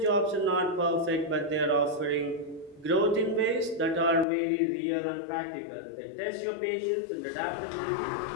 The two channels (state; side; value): drops out; right; at 4.2 s